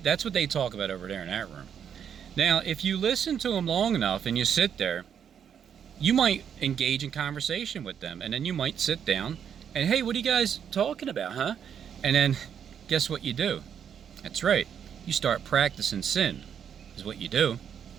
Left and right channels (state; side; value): quieter; left; 8.2 dB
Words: that's what they talk about over there in that room. Now, if you listen to them long enough and you sit there, you might engage in conversation with them, and then you might sit down and, hey, what are you guys talking about, huh? And then guess what you do? That's right, you start practicing sin, is what you do.